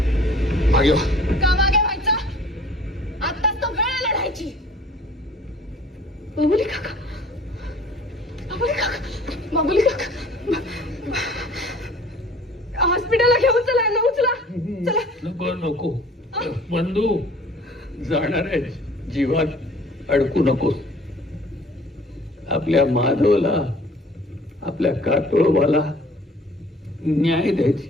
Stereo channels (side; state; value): both; normal; correlation 0.51